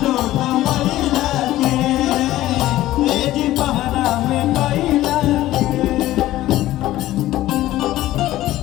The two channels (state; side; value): quieter; right; 15.2 dB